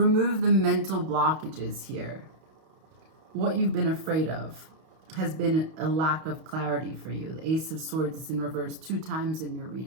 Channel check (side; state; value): left; late; 31 ms